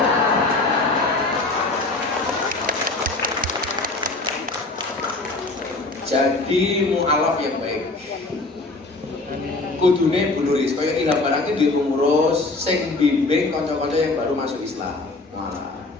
Jadi mu'alaf yang baik. Kudune bunuris, kaya ilham barangnya di pengurus, sing bimbing konco-konco yang baru masuk Islam. Wah.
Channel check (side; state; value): right; quieter; 3.2 dB